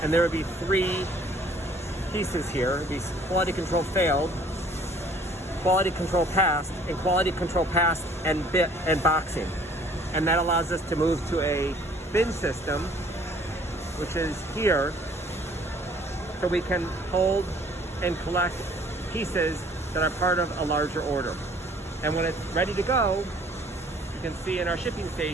and there would be 3 pieces here. It'd be quality control failed, quality control passed, and quality control passed and boxing. And that allows us to move to a bin system, which is here, so we can hold and collect pieces that are part of a larger order. And when it's ready to go, you can see in our shipping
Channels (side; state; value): both; normal; correlation 0.56